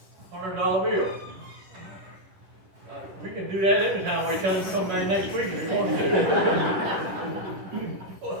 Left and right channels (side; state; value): left; late; 10 ms